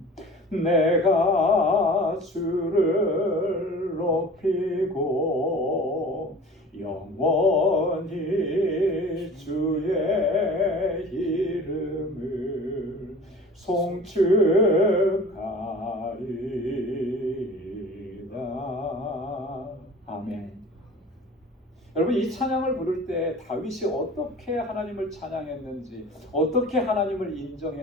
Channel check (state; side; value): normal; both; correlation 0.41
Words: 내가 주를 높이고 영원히 주의 이름을 송축하리이다. 아멘. 여러분, 이 찬양을 부를 때 다윗이 어떻게 하나님을 찬양했는지, 어떻게 하나님을